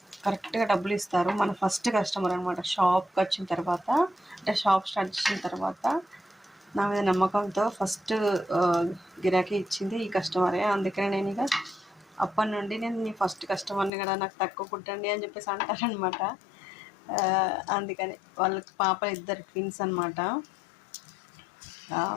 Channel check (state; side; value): drops out; right; at 13.9 s